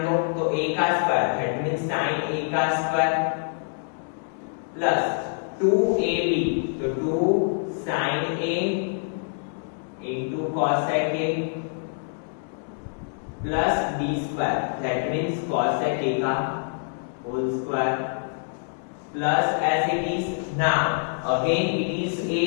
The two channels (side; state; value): right; silent; digital silence